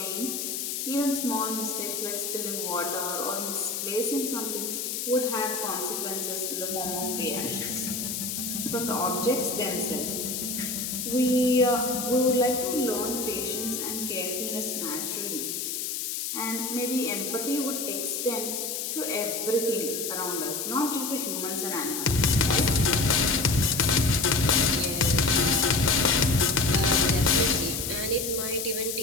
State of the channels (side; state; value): left; noise; hiss, 3 dB below the sound